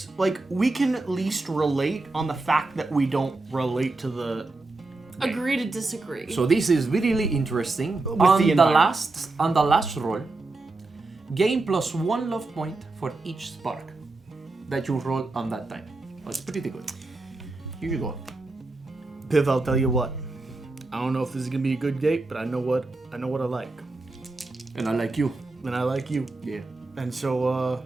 like, we can at least relate on the fact that we don't relate to the. Agree to disagree. So this is really interesting. With On the the environment. last roll, gain +1 love point for each spark that you roll on that time. That's pretty good. Here you go. Piff, I'll tell you what. I don't know if this is gonna be a good date, but I know what I like. And I like you. And I like you. Yeah. And so,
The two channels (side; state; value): left; quieter; 3.3 dB